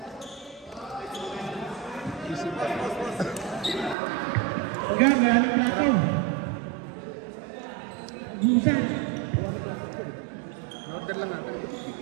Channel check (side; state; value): left; drops out; at 4.0 s